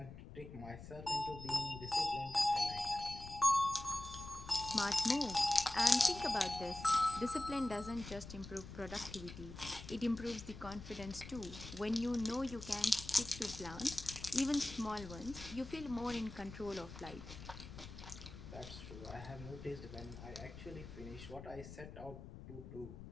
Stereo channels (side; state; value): left; noise; rumble, 12 dB below the sound